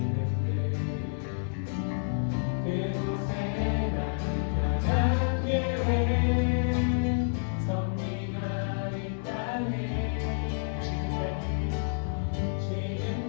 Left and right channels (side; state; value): right; silent; digital silence